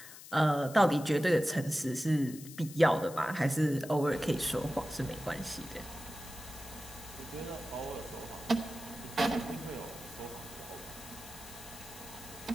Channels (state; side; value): noise; left; hiss, 15 dB below the sound